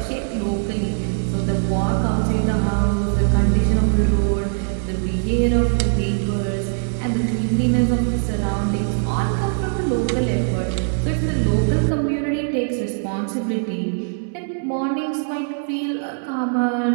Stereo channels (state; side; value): silent; left; digital silence